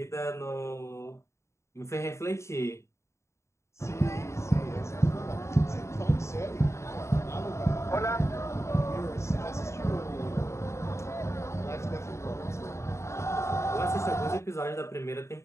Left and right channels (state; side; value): late; right; 0.14 ms